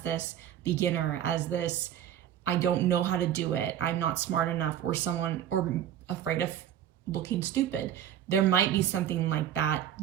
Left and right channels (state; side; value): quieter; left; 10.8 dB